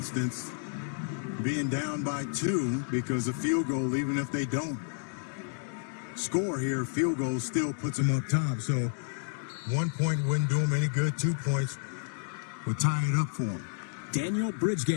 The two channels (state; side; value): silent; right; digital silence